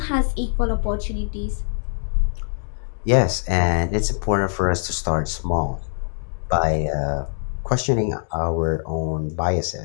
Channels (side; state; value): right; silent; digital silence